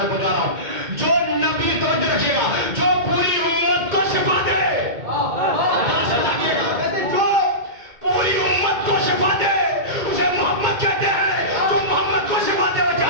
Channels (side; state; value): left; late; 2.2 ms